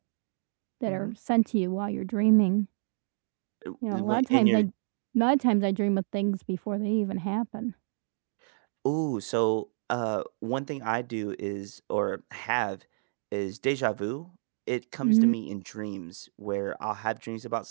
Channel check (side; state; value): left; silent; digital silence